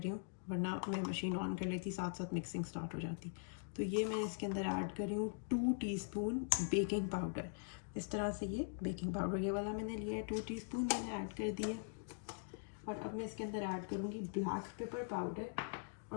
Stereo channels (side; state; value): right; silent; digital silence